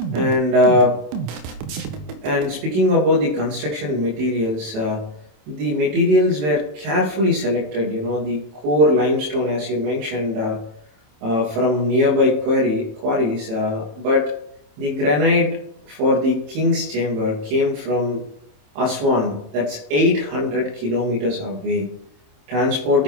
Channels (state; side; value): late; left; 27 ms